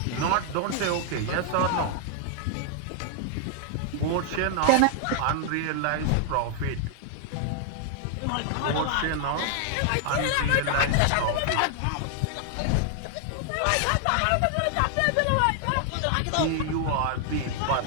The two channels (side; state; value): both; different; correlation 0.00